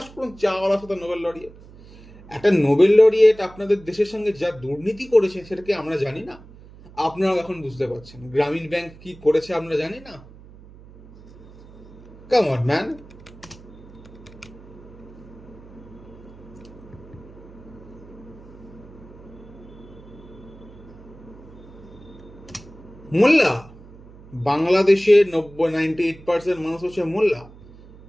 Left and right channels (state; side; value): noise; right; hum, 20 dB below the sound